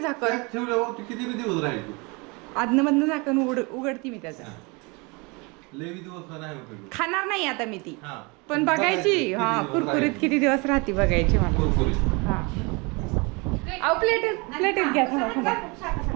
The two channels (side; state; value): left; quieter; 28.6 dB